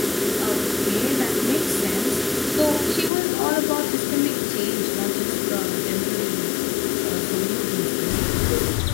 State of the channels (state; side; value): drops out; right; at 3.1 s